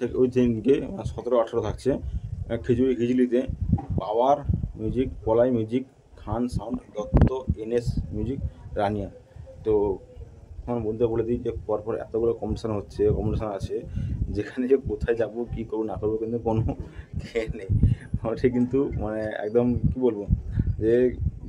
ওই দিনকে 17-18 থাকছে খিচুড়িতে power music, Palai music, Khan sound, Dutta, NS music, Rania. তো আমার বন্ধুরা বলে দিই যে পরপর এতগুলো কম্পিটিশান আছে, যেখানে যে কোথায় যাবো, কী করবো না করবো, কিন্তু কোনো খেয়ে নেই ওটা, কিন্তু মানে একদম কী বলবো, যে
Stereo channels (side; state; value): both; identical; correlation 1.00